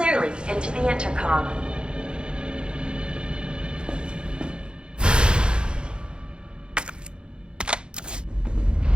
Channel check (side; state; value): left; late; 0.051 ms